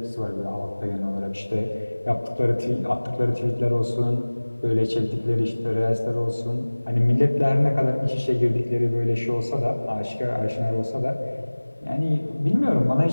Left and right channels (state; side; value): inverted; both; correlation -1.00